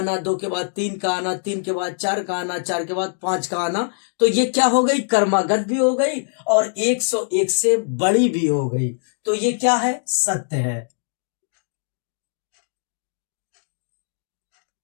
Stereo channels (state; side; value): silent; right; digital silence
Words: 2 के बाद 3 का आना, 3 के बाद 4 का आना, 4 के बाद 5 का आना, तो ये क्या हो गई, कर्मागत भी हो गई और 101 से बड़ी भी हो गई, तो ये क्या है, सत्य है।